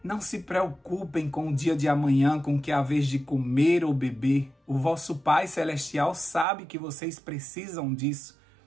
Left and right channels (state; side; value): drops out; left; at 6.5 s